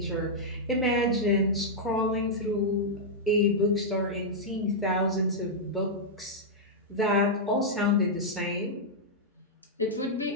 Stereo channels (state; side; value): normal; both; correlation -0.07